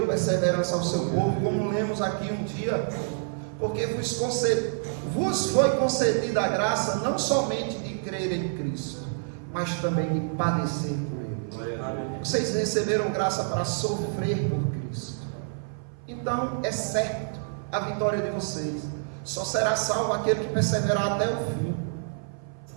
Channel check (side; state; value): left; silent; 55 dB below the other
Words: perseverança ao seu povo, como lemos aqui um dia, porque vos foi concedida a graça não somente de crer em Cristo, mas também de padecer por Ele. Vocês receberam graça para sofrer por Cristo. Então é certo a vitória de vocês. Só será salvo aquele que perseverar até o fim.